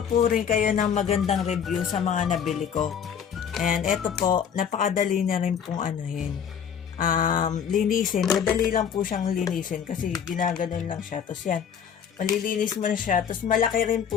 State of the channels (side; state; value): right; quieter; 7.8 dB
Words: po rin kayo ng magandang review sa mga nabili ko. And eto po, napakadali na rin pong linisin. Madali lang po siyang linisin kasi ginaganon lang siya. Tapos yan, malilinis mo na siya. Tapos malaki rin